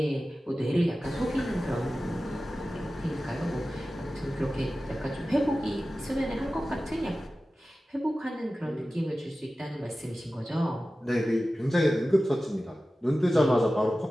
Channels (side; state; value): both; normal; correlation 0.95